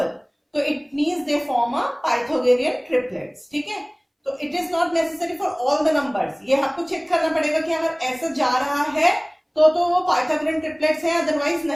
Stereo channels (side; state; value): both; identical; correlation 1.00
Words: तो it means they form a Pythagorean triplets. ठीक है, तो it is not necessary for all the numbers. ये आपको चेक करना पड़ेगा कि अगर ऐसा जा रहा है तो वो पाइथागोरियन ट्रिपलेट्स हैं, अदरवाइज